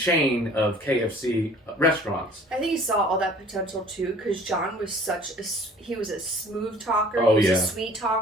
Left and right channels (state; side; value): normal; both; correlation 0.51